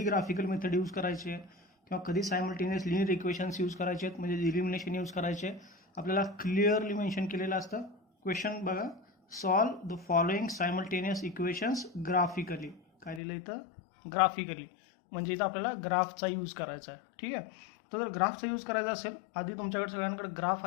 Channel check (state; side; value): drops out; right; at 13.2 s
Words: ग्राफिकल मेथड यूज करायचे किंवा कधी सायमल्टेनियस लिनियर इक्वेशन्स यूज करायचे आहेत, म्हणजे इलिमिनेशन यूज करायचे. आपल्याला क्लिअरली मेन्शन केलेलं असतं. क्वेश्चन बघा, solve the following simultaneous equations graphically. काय लिहिलं इथं? ग्राफिकली. म्हणजे इथं आपल्याला ग्राफचा यूज करायचा आहे. ठीक आहे. तर जर ग्राफचा यूज करायचा असेल, आधी तुमच्याकडे सगळ्यांकडे ग्राफ